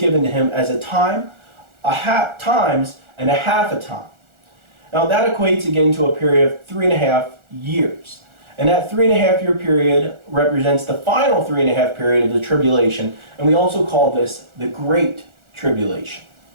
to him as a time, times, and a half a time. Now that equates again to a period of 3.5 years. And that 3.5 year period represents the final 3.5 period of the tribulation, and we also call this the Great Tribulation.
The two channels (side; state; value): left; late; 1.4 ms